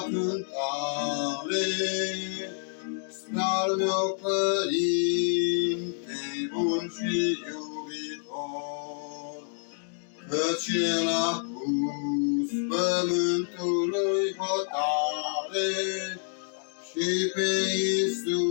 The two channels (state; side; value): silent; right; digital silence